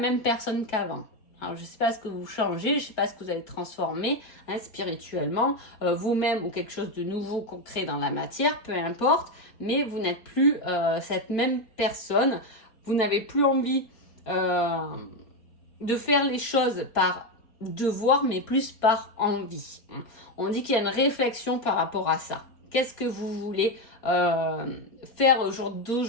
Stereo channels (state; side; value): late; right; 4.3 ms